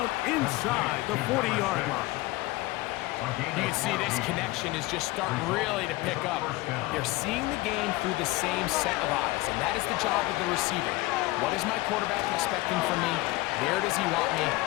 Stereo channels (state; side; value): quieter; right; 20.2 dB